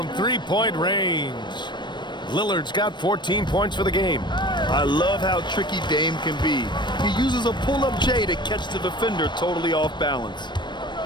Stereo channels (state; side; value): late; right; 0.22 ms